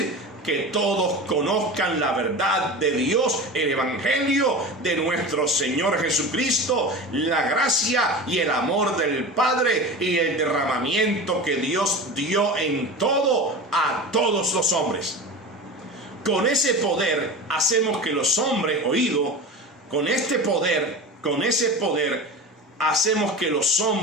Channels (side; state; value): both; normal; correlation 0.30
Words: que todos conozcan la verdad de Dios, el evangelio de nuestro Señor Jesucristo, la gracia y el amor del Padre y el derramamiento que Dios dio en todo a todos los hombres. Con ese poder hacemos que los hombres, oído, con ese poder hacemos que los